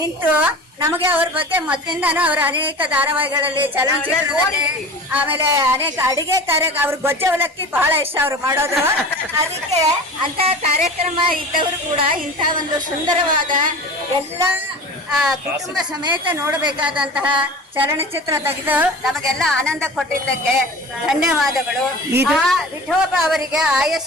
ನಮಗೆ ಅವ್ರ ಬಗ್ಗೆ ಮೊದಲಿಂದಾನು ಅವರ ಅನೇಕ ಧಾರಾವಾಹಿಗಳಲ್ಲಿ ಚಲನಚಿತ್ರದಲ್ಲಿ ಆಮೇಲೆ ಅನೇಕ ಅಡಿಗೆ ಅವ್ರ ಗೊಜ್ಜೆ ಅವಲಕ್ಕಿ ಬಹಳ ಇಷ್ಟ ಅವ್ರು ಮಾಡೋದು. ಅದಕ್ಕೆ ಅಂತ ಕಾರ್ಯಕ್ರಮ ಇದ್ದವರು ಕೂಡ ಇಂಥ ಒಂದು ಸುಂದರವಾದ ಎಲ್ಲ ಕುಟುಂಬ ಸಮೇತ ನೋಡಬೇಕಾದಂತಹ ಚಲನಚಿತ್ರ ತೆಗೆದು ನಮಗೆಲ್ಲ ಆನಂದ ಕೊಟ್ಟಿದ್ದಕ್ಕೆ ಧನ್ಯವಾದಗಳು. ವಿಠೋಬ ಅವರಿಗೆ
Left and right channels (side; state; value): both; normal; correlation 0.36